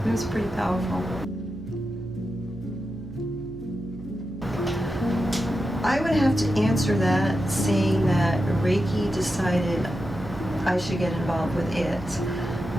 was pretty powerful. I would have to answer that saying that Reiki decided I should get involved with it.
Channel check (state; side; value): noise; right; hum, 15 dB below the sound